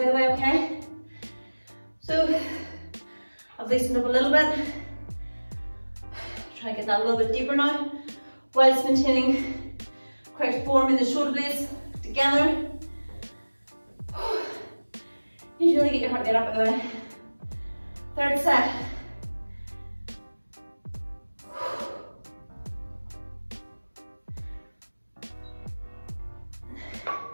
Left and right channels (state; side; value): inverted; both; correlation -1.00